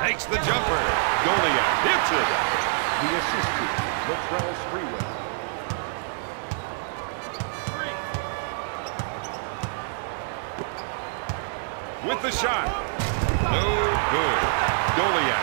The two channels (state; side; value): silent; left; 61 dB below the other